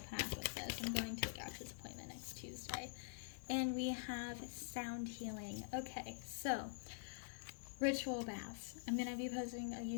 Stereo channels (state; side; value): silent; right; digital silence